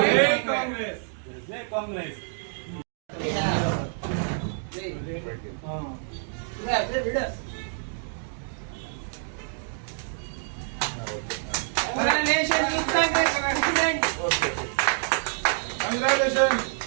కాంగ్రెస్. జై కాంగ్రెస్.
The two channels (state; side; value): silent; left; 60 dB below the other